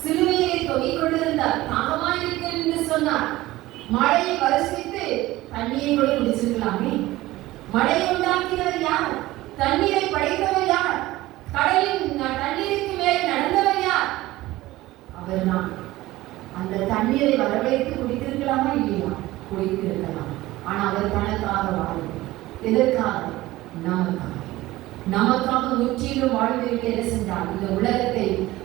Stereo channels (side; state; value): left; quieter; 17.6 dB